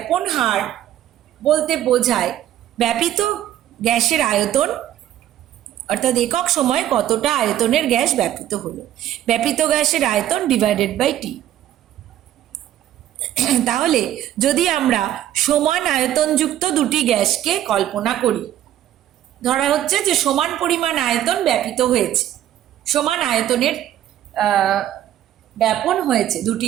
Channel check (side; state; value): left; quieter; 12.2 dB